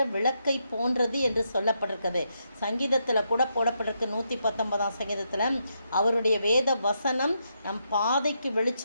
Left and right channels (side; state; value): both; inverted; correlation -0.80